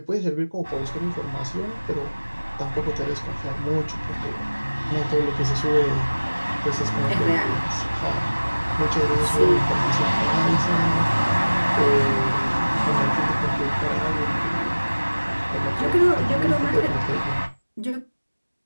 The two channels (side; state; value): both; inverted; correlation -1.00